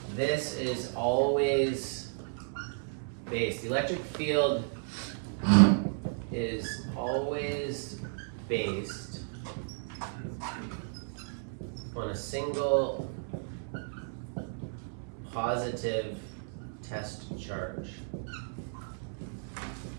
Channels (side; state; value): left; silent; 56 dB below the other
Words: this is always based. The electric field is always based on a single positive test charge.